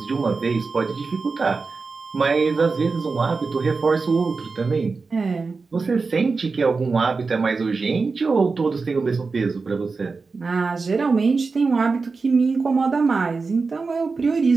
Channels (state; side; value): quieter; left; 4.3 dB